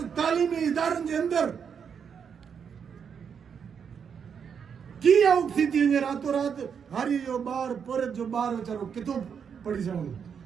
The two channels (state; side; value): quieter; left; 7.1 dB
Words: तालीमी इदारनि जे अंदरि की आउट थी वञे रातो रात हारी जो ॿार पुरत जो ॿार वीचारो किथां पढ़ी सघंदो